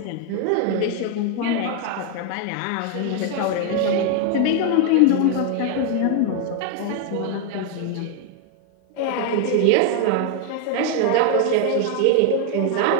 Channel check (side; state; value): both; different; correlation 0.01